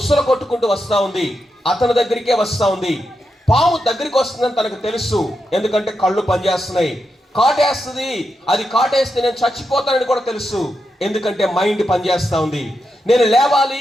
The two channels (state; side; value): normal; both; correlation 0.86